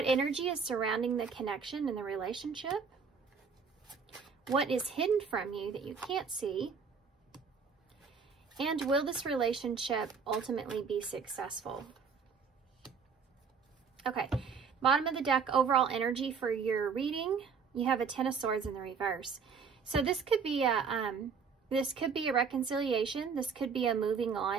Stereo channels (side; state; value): left; quieter; 5.7 dB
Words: energy is surrounding the connection and the relationship? What is hidden from you that you can't see? And will this relationship ultimately be successful? Okay, bottom of the deck, overall energy for your reading. You have a Ten of Swords in the reverse. So this could be a reconciliation. This could be a moving